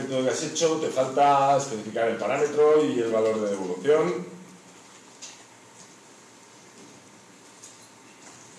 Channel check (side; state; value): both; identical; correlation 1.00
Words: que has hecho te falta especificar el parámetro y el valor de devolución.